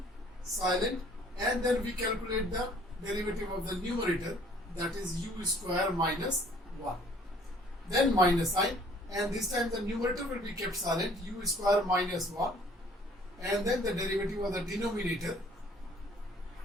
silent, and then we calculate the derivative of the numerator, that is u square minus 1, then minus sign, and this time the numerator will be kept silent, u square minus 1, and then the derivative of the denominator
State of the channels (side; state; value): both; normal; correlation 0.56